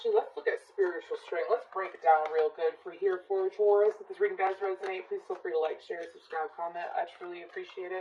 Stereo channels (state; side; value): identical; both; correlation 1.00